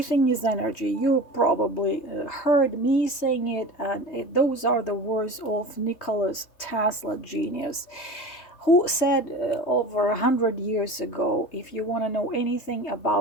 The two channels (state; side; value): late; right; 3.2 ms